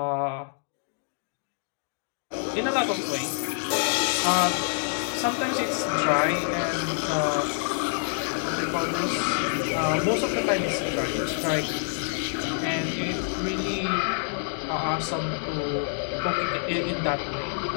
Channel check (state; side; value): silent; right; 60 dB below the other